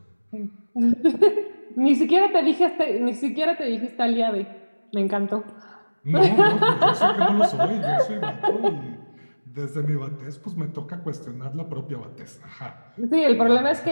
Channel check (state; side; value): inverted; both; correlation -1.00